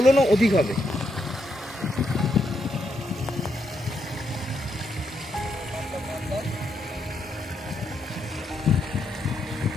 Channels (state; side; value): normal; both; correlation 0.80